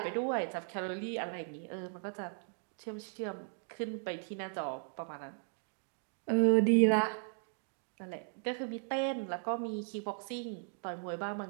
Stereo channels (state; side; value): silent; left; 53 dB below the other